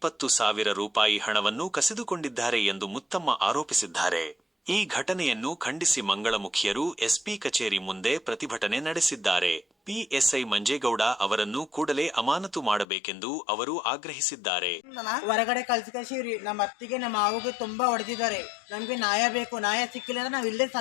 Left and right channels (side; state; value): right; drops out; at 12.9 s